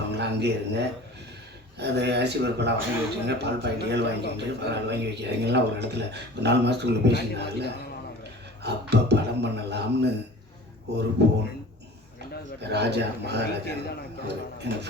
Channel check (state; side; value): normal; both; correlation 0.41